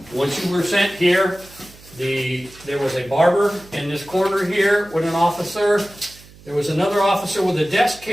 Once you were sent here, there was a barber in this corner here with an officer. There was another officer with a desk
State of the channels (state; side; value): noise; right; hum, 23 dB below the sound